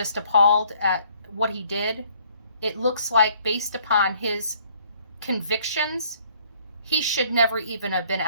appalled at what he did. It looks like, based upon his convictions, he should never even have been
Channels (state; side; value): inverted; both; correlation -0.62